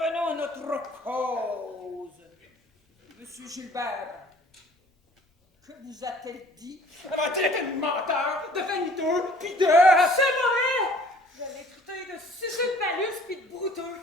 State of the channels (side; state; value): both; normal; correlation 0.53